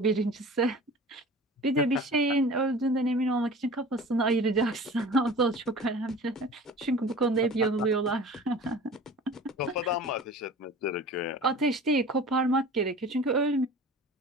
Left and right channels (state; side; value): normal; both; correlation 0.40